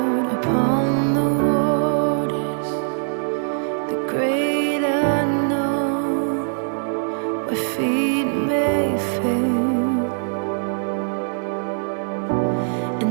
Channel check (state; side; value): silent; left; 64 dB below the other